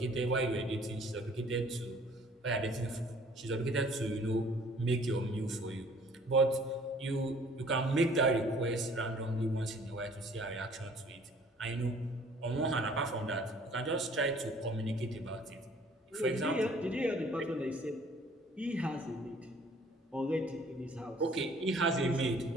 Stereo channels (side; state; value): both; normal; correlation 0.55